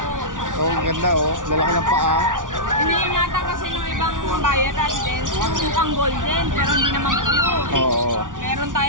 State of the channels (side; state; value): left; late; 0.88 ms